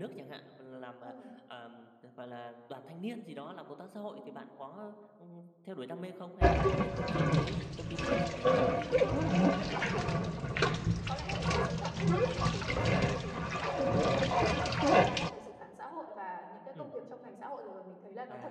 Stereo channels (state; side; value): identical; both; correlation 1.00